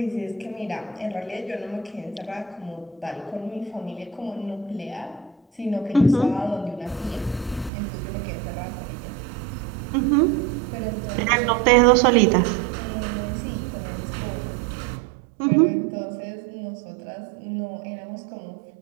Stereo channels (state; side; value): drops out; left; at 7.7 s